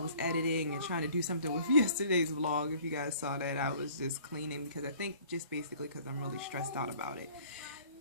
editing and trying to do something with yesterday's vlog. If you guys saw that, I was just cleaning because I think just basically because I'm really stressed out about it.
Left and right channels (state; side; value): inverted; both; correlation -0.52